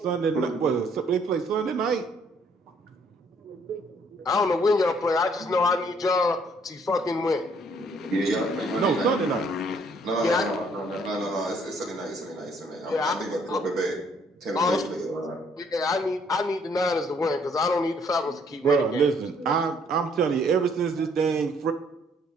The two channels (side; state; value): both; normal; correlation 0.65